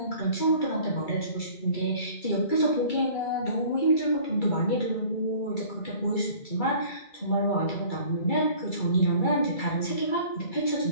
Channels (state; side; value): late; right; 2.3 ms